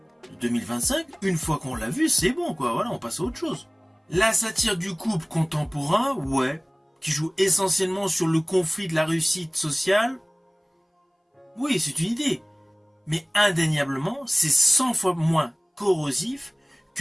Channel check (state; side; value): identical; both; correlation 1.00